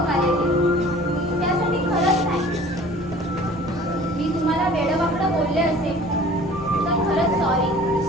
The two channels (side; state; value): both; normal; correlation 0.47